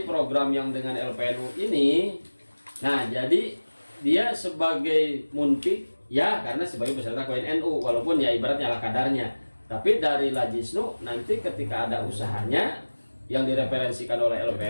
program yang dengan LPNU ini, nah jadi dia sebagai munpik ya karena sebagai peserta koin NU, walaupun ya ibaratnya ala kadarnya, tapi dari Lajisnu nanti ketika ada usahanya yang direferensikan oleh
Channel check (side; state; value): both; inverted; correlation -1.00